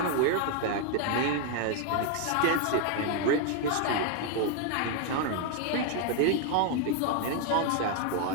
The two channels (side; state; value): both; different; correlation 0.00